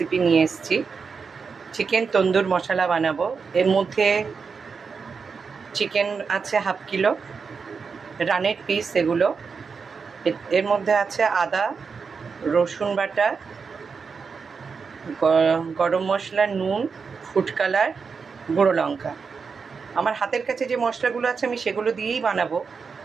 নিয়ে এসেছি, চিকেন তন্দুর মশলা বানাবো। এর মধ্যে চিকেন আছে হাফ কিলো, রানের পিস এগুলো। এর মধ্যে আছে আদা, রসুন বাটা, গরম মশলা, নুন, ফুড কালার, গুঁড়ো লঙ্কা। আমার হাতের কাছে যে মশলাগুলো আছে আমি সেগুলো দিয়েই বানাবো,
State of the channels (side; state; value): left; quieter; 5.4 dB